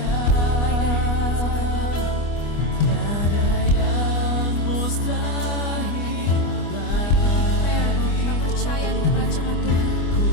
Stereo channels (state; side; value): late; right; 25 ms